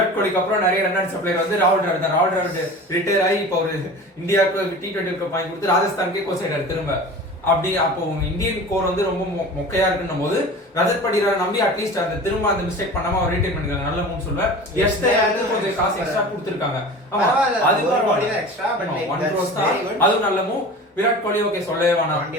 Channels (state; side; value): normal; both; correlation 0.37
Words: கோலிக்கு அப்புறம் நிறைய ரன் அடிச்ச பிளேயர் வந்து ராகுல் டிராவிட் தான். ராகுல் டிராவிட் ரிட்டையர் ஆகி இப்போ ஒரு இந்தியாவுக்கு T20 வாங்கி கொடுத்து ராஜஸ்தானுக்கே கோச் ஆயிட்டாரு திரும்ப. அப்படி அப்போ இந்தியன் கோர் வந்து ரொம்ப மொக்கையா இருக்குன்னும் போது ரஜத் பட்டிதாரை நம்பி அட்லீஸ்ட் அந்த திரும்ப அந்த மிஸ்டேக் பண்ணாம அவர் ரீடைன் பண்ணிருக்காங்க. நல்ல மூணு சொல்லுவேன். கொஞ்சம் காசு எக்ஸ்ட்ரா கொடுத்துருக்காங்க. அதுவும் நல்ல மூவ். விராட் கோலி ஓகே சொல்லவே வேணாம்.